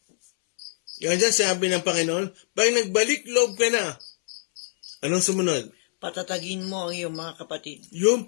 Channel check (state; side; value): silent; right; 62 dB below the other